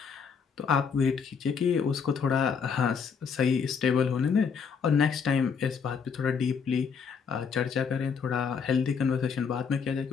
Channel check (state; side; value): quieter; right; 6.1 dB